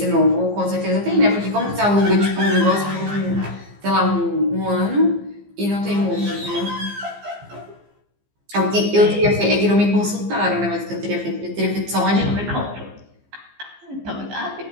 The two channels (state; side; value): late; left; 15 ms